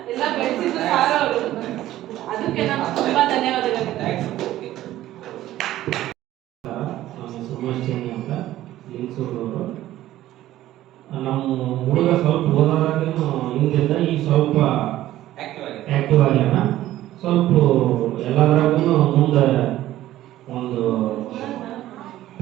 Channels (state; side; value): quieter; left; 14.3 dB